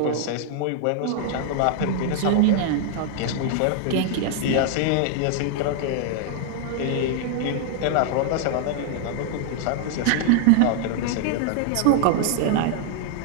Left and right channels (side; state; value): both; different; correlation 0.00